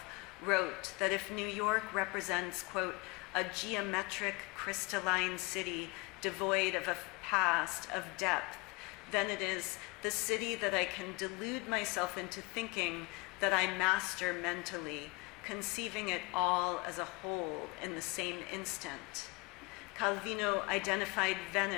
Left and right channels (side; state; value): right; quieter; 26.6 dB